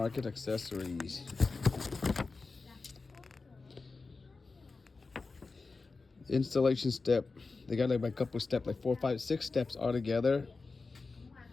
accessories. Installation step. They got like a couple steps, like 4, 5, 6 steps altogether.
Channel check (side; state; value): right; quieter; 4.0 dB